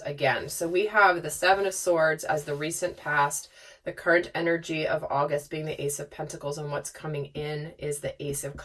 again. So we have the 7 of Swords as the recent past, the current energy of August being the Ace of Pentacles, and what's coming in is the Ace of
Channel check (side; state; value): both; identical; correlation 1.00